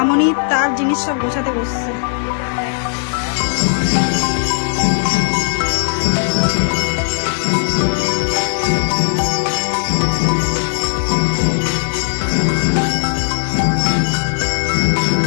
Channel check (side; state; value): right; silent; 68 dB below the other